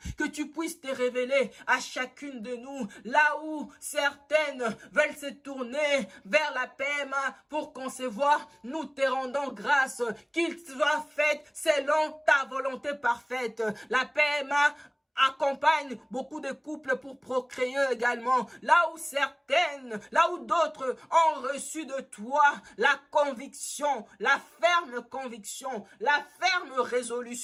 que tu puisses te révéler à chacune de nous, là où certaines veulent se tourner vers la PMA pour concevoir, nous te rendons grâce, qu'il soit fait selon ta volonté parfaite. La PMA accompagne beaucoup de couples pour procréer également. Là où d'autres ont reçu de toi la conviction, la ferme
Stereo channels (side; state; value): both; identical; correlation 1.00